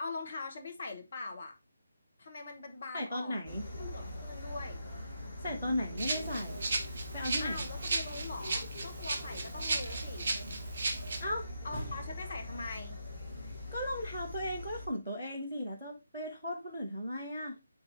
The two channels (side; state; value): both; inverted; correlation -0.81